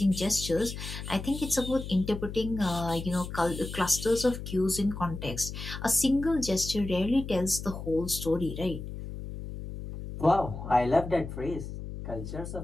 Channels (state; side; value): noise; left; hum, 9 dB below the sound